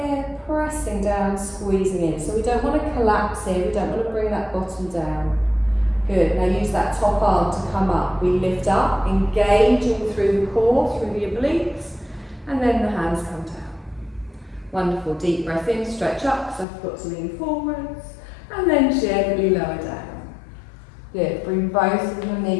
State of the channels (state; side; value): drops out; right; at 16.7 s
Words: pressing down, squeezing in. So we don't want to collapse here, we don't want to bring that bottom down. Good, now use that top arm to come up. We lift up, engaging through the core, through the obliques, and then the hands come down. Wonderful, deep breath in, stretch up, because I forgot to lean forwards, and then gently lower down. Good, bring both of your